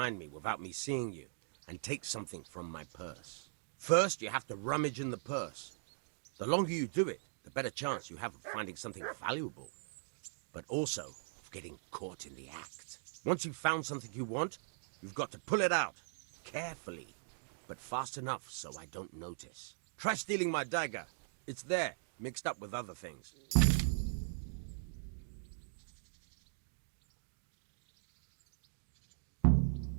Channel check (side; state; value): left; silent; digital silence